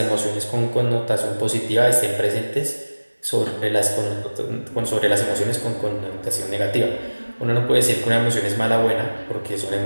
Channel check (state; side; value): inverted; both; correlation -1.00